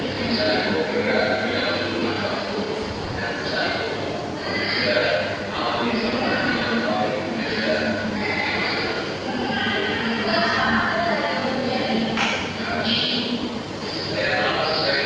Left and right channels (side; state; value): both; identical; correlation 1.00